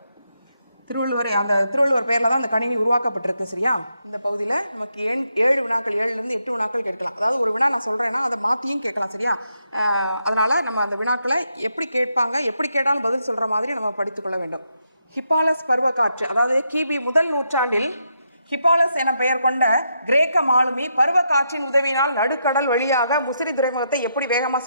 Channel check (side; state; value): both; inverted; correlation -0.81